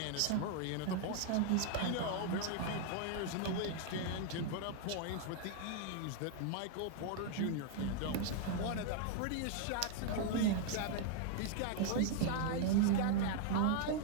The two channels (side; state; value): both; different; correlation 0.00